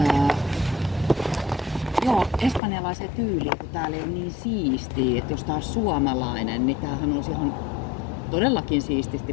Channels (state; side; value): drops out; right; at 2.6 s